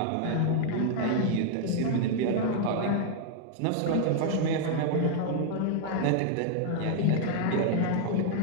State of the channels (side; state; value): both; different; correlation 0.00